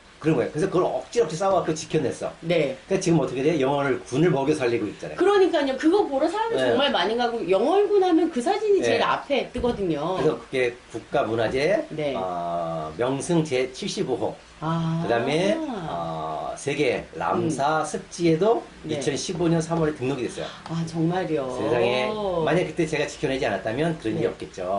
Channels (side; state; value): both; identical; correlation 1.00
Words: 그런 거예요. 그래서 그걸 억지로 싸워갖고 지켜냈어. 네. 그러니까 지금 어떻게 돼? 영월을 군을 먹여 살리고 있잖아요. 그러니까요. 그거 보러 사람이 네. 정말 많이 가고 영월군 하면 그 사진이 제일 네. 앞에 뜨거든요. 그래서 그게 국가문화재 네. 명승 제75호 아. 그 다음에 세계 람사 습지에도 네. 2015년 3월에 등록이 됐어요. 아, 정말요. 세상에 만약 그때 제가 지켜내지 않았다면 그런 일이 네.